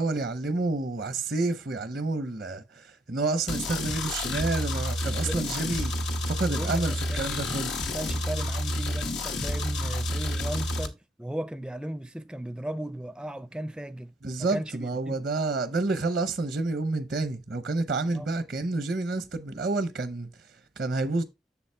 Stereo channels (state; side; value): normal; both; correlation 0.69